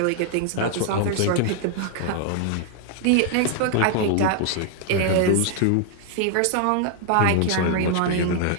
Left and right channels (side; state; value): both; different; correlation 0.00